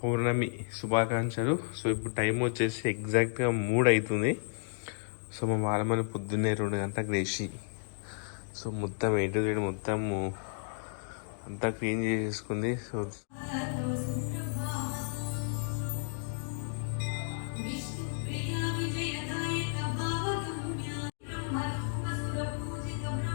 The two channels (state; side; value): silent; right; digital silence